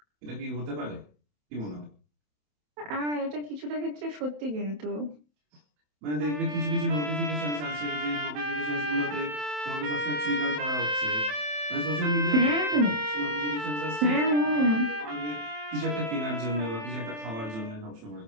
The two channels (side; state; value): left; late; 27 ms